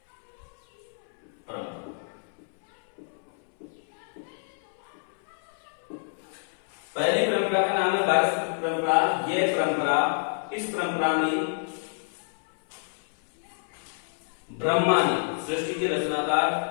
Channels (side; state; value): right; silent; 59 dB below the other